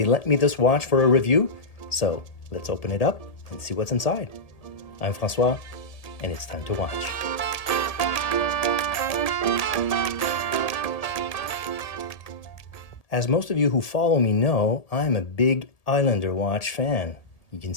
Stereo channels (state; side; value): late; right; 1.8 ms